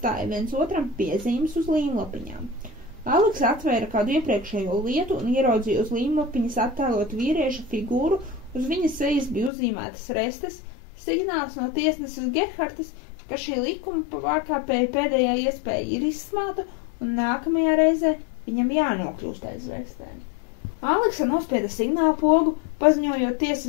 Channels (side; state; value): right; drops out; at 9.5 s